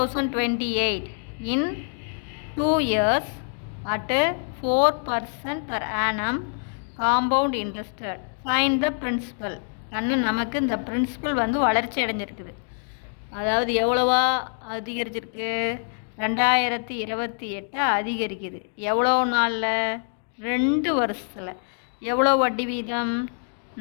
in 2 years at 4% per annum compound interest. Find the principal. நமக்கு இந்த பிரின்சிபல் வளர்ச்சி அடைஞ்சிருக்குது. அதாவது எவ்வளவா அதிகரிச்சிருக்கு? 2028 அதிகரிக்குது. எவ்வளோ நாளில்? 2 வருஷத்தில். எவ்வளோ வட்டி வீதம்?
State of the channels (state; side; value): silent; right; 62 dB below the other